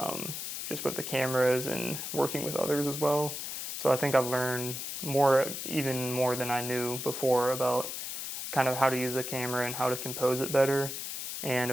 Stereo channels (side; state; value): left; noise; hiss, 5 dB below the sound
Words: just with the cameras and working with others as well. So I think I've learned even more than I knew before about kind of how to use the camera and how to compose it better. And